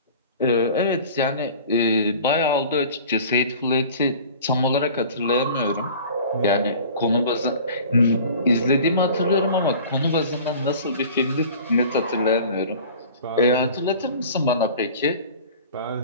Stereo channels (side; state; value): both; inverted; correlation -0.43